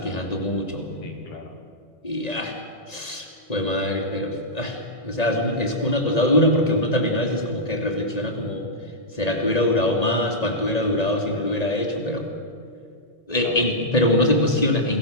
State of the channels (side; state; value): right; late; 1.9 ms